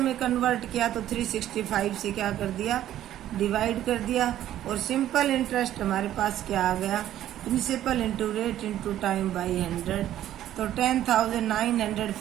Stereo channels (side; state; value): left; quieter; 12.3 dB